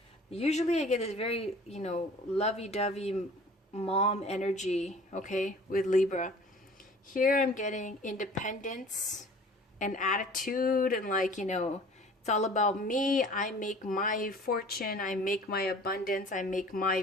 Usually I get this very, lovey-dovey mom energy, okay, with Libra. Here I'm getting independence and attitude and it's all about me. I make my fortune. I make my abundance. I make my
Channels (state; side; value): normal; both; correlation 0.47